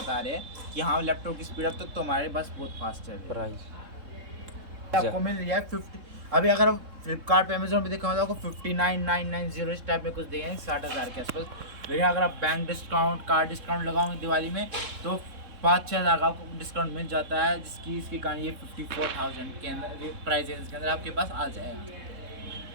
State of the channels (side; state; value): left; late; 3.7 ms